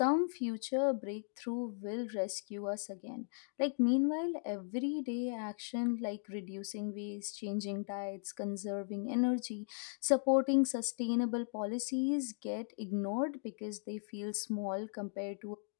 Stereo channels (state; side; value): silent; right; digital silence